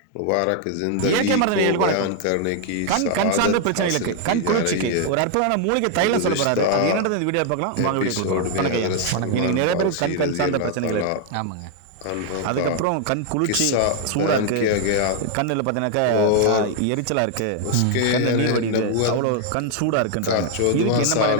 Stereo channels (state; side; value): different; both; correlation 0.00